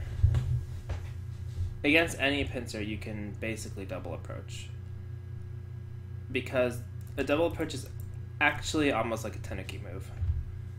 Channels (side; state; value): both; identical; correlation 1.00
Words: Against any pincer, you can basically double approach, because a double approach is actually almost like a tenuki move.